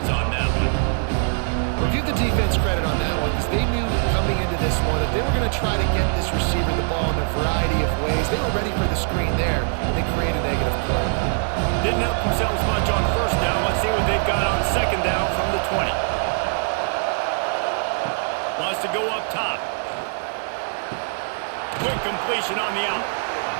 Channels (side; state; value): left; silent; 63 dB below the other